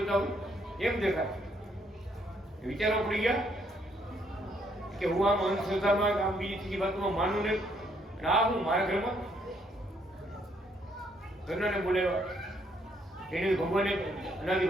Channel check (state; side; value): normal; both; correlation 0.70